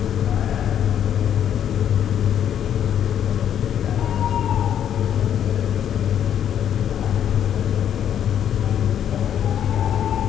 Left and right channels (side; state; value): right; quieter; 9.6 dB